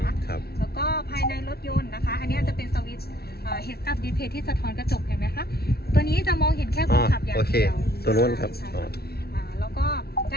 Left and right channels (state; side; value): late; right; 0.45 ms